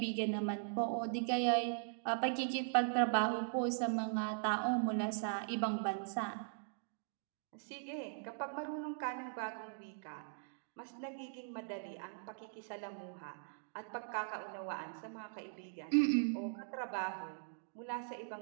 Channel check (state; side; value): silent; left; digital silence